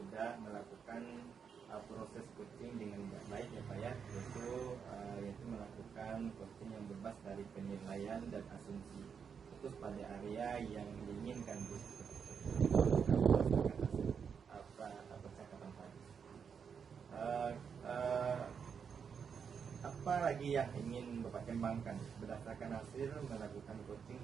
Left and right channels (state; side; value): quieter; left; 6.7 dB